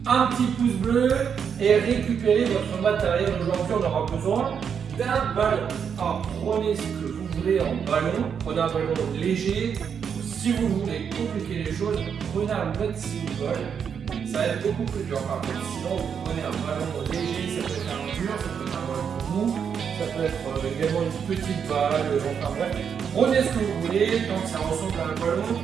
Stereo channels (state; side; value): quieter; left; 7.2 dB